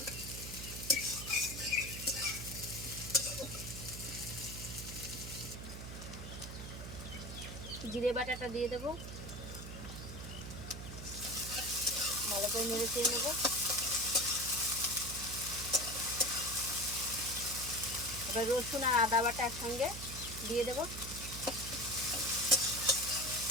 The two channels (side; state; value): right; noise; hum, 9 dB below the sound